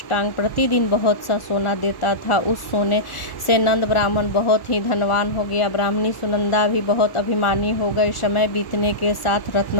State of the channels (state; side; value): late; right; 1.4 ms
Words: प्रतिदिन बहुत सा सोना देता था। उस सोने से नंद ब्राह्मण बहुत ही धनवान हो गया। ब्राह्मणी सुनंदा भी बहुत अभिमानी हो गई। समय बीतने के साथ